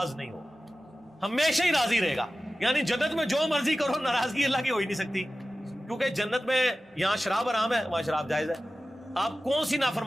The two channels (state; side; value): normal; both; correlation 0.95